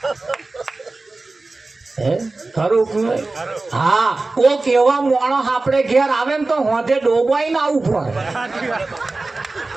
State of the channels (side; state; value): left; quieter; 3.4 dB